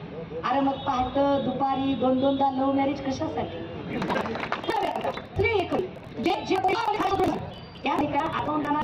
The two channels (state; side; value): identical; both; correlation 1.00